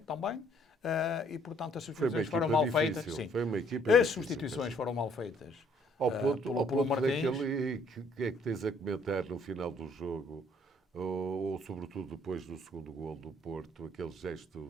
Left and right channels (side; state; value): both; normal; correlation 0.63